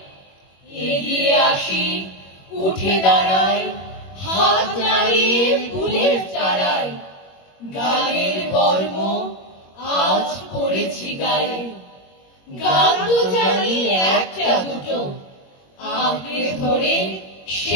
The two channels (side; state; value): right; late; 21 ms